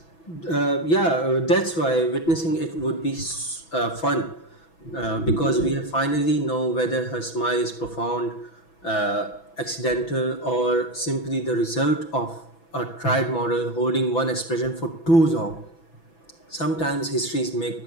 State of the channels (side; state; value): right; late; 6.1 ms